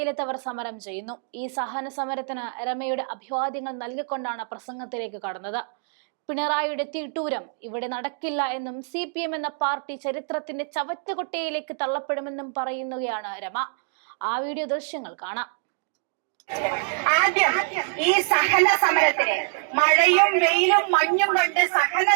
സമരം ചെയ്യുന്നു. ഈ സഹന സമരത്തിന് രമയുടെ അഭിവാദ്യങ്ങൾ നൽകിക്കൊണ്ടാണ് പ്രസംഗത്തിലേക്ക് കടന്നത്. പിണറായിയുടെ തീട്ടൂരം ഇവിടെ നടക്കില്ല എന്നും CPM എന്ന പാർട്ടി ചരിത്രത്തിന്റെ ചവറ്റുകൊട്ടയിലേക്ക് തള്ളപ്പെടുമെന്നും പറയുകയാണ് രമ. ആ വീഡിയോ ദൃശ്യങ്ങൾ കാണാം. ആദ്യം ഈ സഹന സമരത്തിന് മഴയും വെയിലും മഞ്ഞും കൊണ്ട് സഹന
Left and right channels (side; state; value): left; silent; digital silence